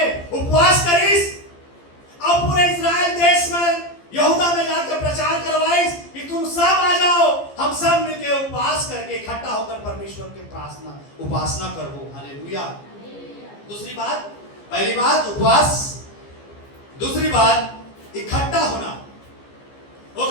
उपवास करीस और पूरे इस्राएल देश में यहूदा में जाकर प्रचार करवाइस कि तुम सब आ जाओ, हम सब मिलकर उपवास करके इकट्ठा होकर परमेश्वर की प्रार्थना उपासना करो। हालेलुया। दूसरी बात, पहली बात उपवास, दूसरी बात इकट्ठा होना।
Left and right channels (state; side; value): late; right; 15 ms